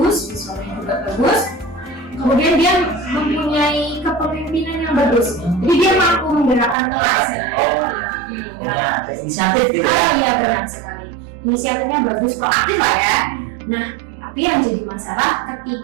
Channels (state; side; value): drops out; left; at 6.8 s